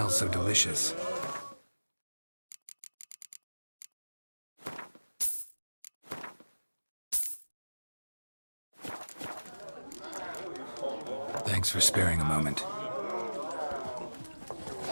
so delicious? Thanks for sparing a moment.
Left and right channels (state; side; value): inverted; both; correlation -1.00